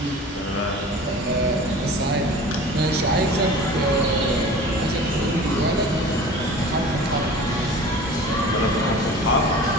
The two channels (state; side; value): normal; both; correlation 0.40